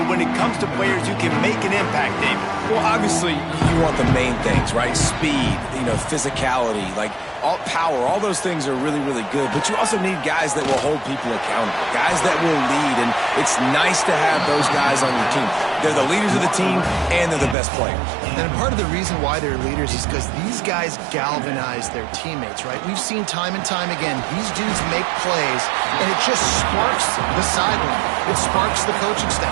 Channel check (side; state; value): left; drops out; at 17.6 s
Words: when it comes to players who can make an impact, David? Well, obviously, you want the main things, right? Speed, physicality, all power, all those things are really, really good. But you also need guys that will hold people accountable, guys that will lead. And it's nice to have those guys on your team. They're the leaders of the team, and they're the best players. And part of the reason why they're leaders is because these guys galvanize their teammates, right? We've seen time and time again, these dudes make plays, and it just sparks the sideline. It sparks the coaching staff.